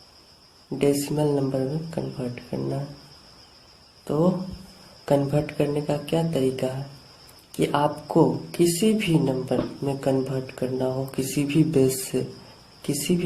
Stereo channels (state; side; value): identical; both; correlation 1.00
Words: डेसिमल नंबर में कन्वर्ट करना है। तो कन्वर्ट करने का क्या तरीका है कि आपको किसी भी नंबर में कन्वर्ट करना हो, किसी भी